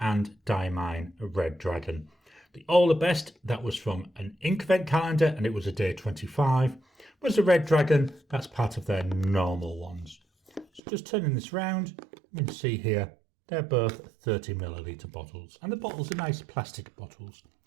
Diamine Red Dragon. The All the Best, that was from an Inkvent calendar and it was a day 25. Whereas the Red Dragon, that's part of their normal ones. So just turning this round, you can see here, they're both 30ml bottles. And the bottles are nice plastic bottles.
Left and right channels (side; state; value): left; drops out; at 10.8 s